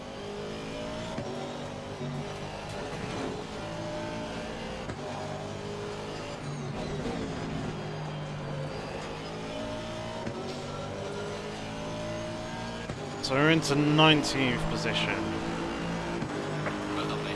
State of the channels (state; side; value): identical; both; correlation 1.00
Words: So we're into 19th position. Well done,